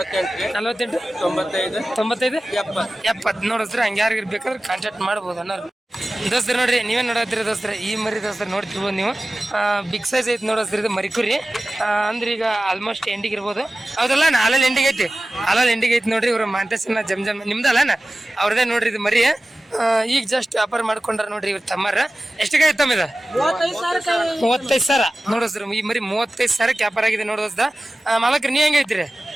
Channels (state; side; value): normal; both; correlation 0.96